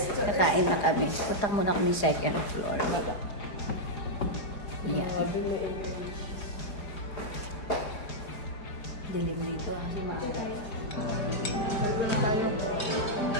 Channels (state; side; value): late; right; 4.8 ms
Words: Kakain na kami. Punta muna kami second floor. Yan. Dilim dito kasi maaral.